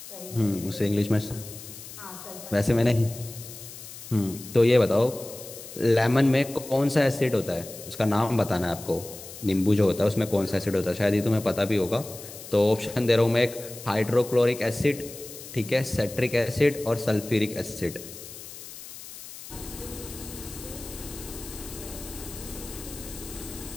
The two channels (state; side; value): noise; left; hiss, 14 dB below the sound